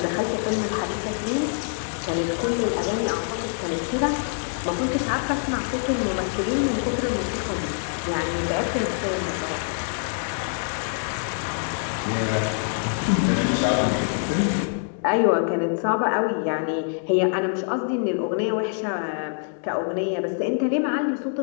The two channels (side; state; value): right; silent; 62 dB below the other